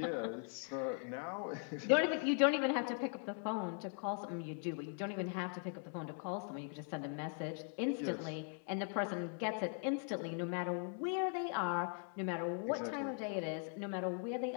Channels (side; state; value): right; silent; 51 dB below the other